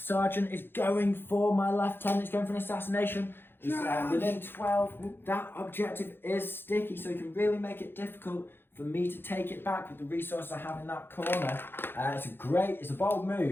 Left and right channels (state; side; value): late; right; 0.10 ms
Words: is going for my lieutenant. He's going for an assassination. He's within 12. That objective is sticky, so he can really make it difficult for me to take it back with the resources I have in that corner. It's a bold